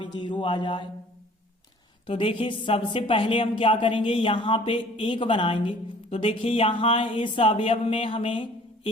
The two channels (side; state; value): both; normal; correlation 0.52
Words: 0 आ जाए। तो देखिए सबसे पहले हम क्या करेंगे, यहाँ पे 1 बनाएंगे। तो देखिए यहाँ इस अवयव में हमें